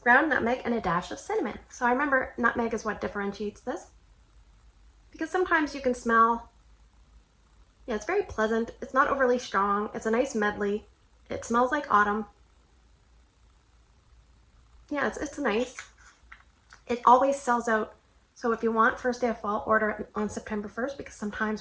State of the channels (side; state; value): both; identical; correlation 1.00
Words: ground nutmeg, and a dash of cinnamon. So I remember nutmeg is what differentiates this. Because sometimes you can smell, yeah, it's very pleasant. It's not overly strong. It's a nice medley. It smells like autumn. Yeah, it's nice. It always sells out. So if you want First Day of Fall, order it on September 1st, because